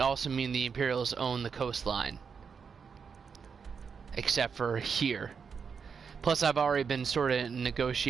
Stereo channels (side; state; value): left; quieter; 6.1 dB